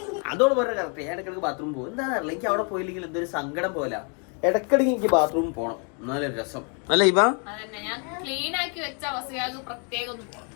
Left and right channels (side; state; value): right; quieter; 38.3 dB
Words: അതോട് പറഞ്ഞ കറക്റ്റ്. ഞാൻ ഇടയ്ക്കിടയ്ക്ക് ബാത്റൂം പോകും. എന്താ അറിയില്ല, എനിക്ക് അവിടെ പോയില്ലെങ്കിൽ എന്തൊരു സങ്കടം പോലെ. ഇടയ്ക്കിടയ്ക്ക് എനിക്ക് ബാത്റൂമിൽ പോകണം, എന്നാലും രസം അല്ല ഇവ?